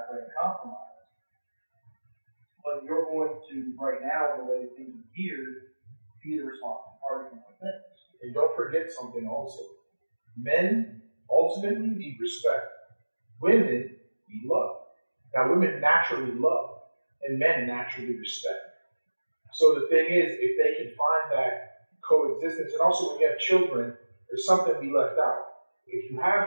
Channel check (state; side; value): inverted; both; correlation -1.00